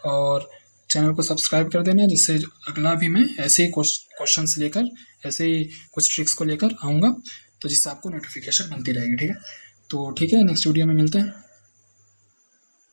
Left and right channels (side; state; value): both; inverted; correlation -1.00